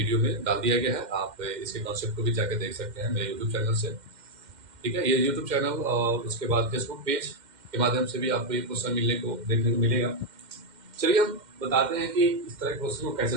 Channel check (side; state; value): left; late; 2.1 ms